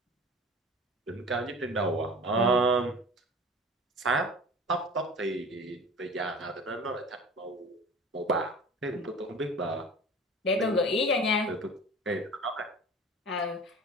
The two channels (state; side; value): normal; both; correlation 0.40